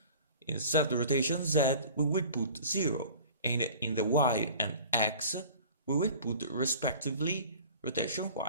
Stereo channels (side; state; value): both; inverted; correlation -0.44